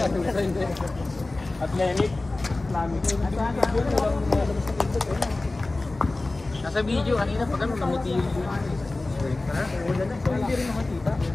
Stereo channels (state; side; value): quieter; right; 3.1 dB